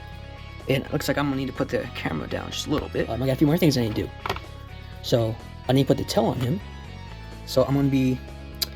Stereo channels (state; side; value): identical; both; correlation 1.00